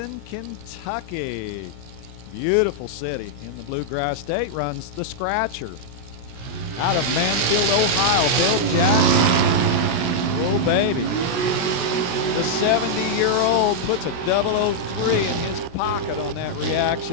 Kentucky. Beautiful city in the Bluegrass State, runs the Scratcher. Out of Mansfield, Ohio, Bill Jackson. Oh, baby. The 70-year-old puts a 003 in his pocket on that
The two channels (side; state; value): right; late; 17 ms